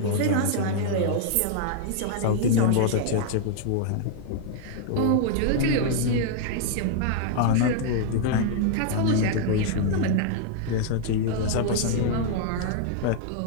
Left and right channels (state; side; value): different; both; correlation 0.00